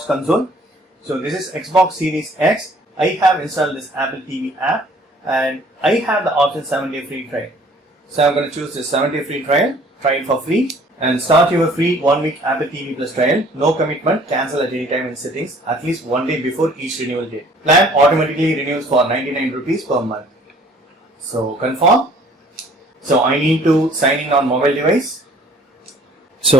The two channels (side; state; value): both; normal; correlation 0.55